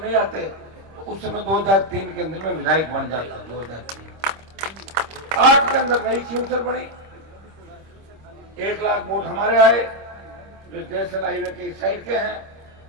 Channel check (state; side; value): late; left; 26 ms